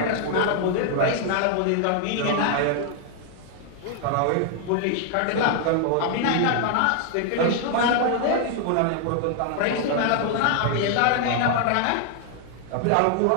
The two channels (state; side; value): different; both; correlation 0.00